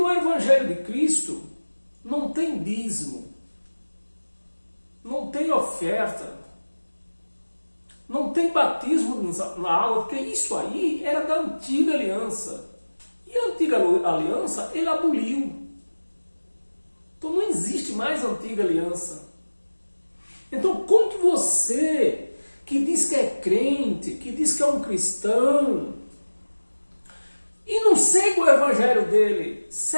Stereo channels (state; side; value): inverted; both; correlation -1.00